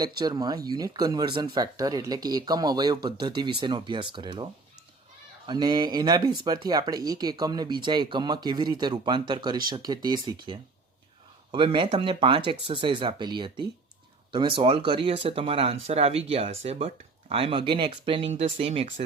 લેક્ચરમાં unit conversion factor એટલે કે એકમ અવયવ પદ્ધતિ વિશેનો અભ્યાસ કરેલો અને એના બેઝ પરથી આપણે એક એકમને બીજા એકમમાં કેવી રીતે રૂપાંતર કરી શકીએ તે શીખીએ. હવે મેં તમને 5 એક્સરસાઇઝ આપેલી હતી, તમે સોલ્વ કરી હશે, તમારા આન્સર આવી ગયા હશે, but I am again explaining the same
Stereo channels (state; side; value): quieter; left; 3.7 dB